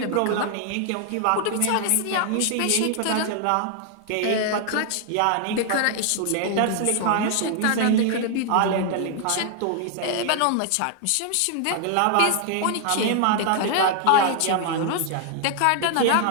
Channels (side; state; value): both; different; correlation 0.00